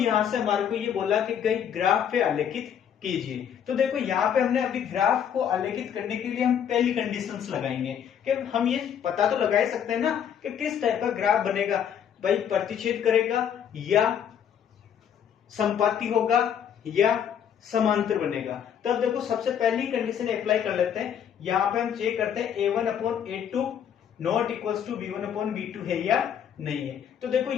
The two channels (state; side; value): quieter; right; 8.7 dB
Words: से हमारे को ये बोला कि कई ग्राफ पे आलेखित कीजिए। तो देखो यहाँ पे हमने अभी ग्राफ को आलेखित करने के लिए हम पहली कंडीशंस लगाएंगे कि हम ये पता तो लगा ही सकते हैं ना कि किस टाइप का ग्राफ बनेगा, भाई प्रतिच्छेद करेगा या संपाती होगा या समांतर बनेगा। तब देखो सबसे पहली कंडीशन अप्लाई कर लेते हैं। यहाँ पे हम चेक करते हैं a1/a2 not equals to b1/b2 है या नहीं है। तो देखो